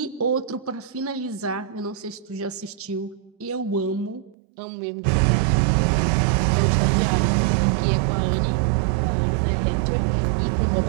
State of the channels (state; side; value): drops out; left; at 4.4 s